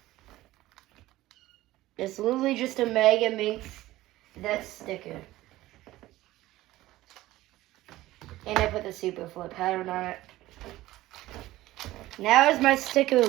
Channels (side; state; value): left; quieter; 16.6 dB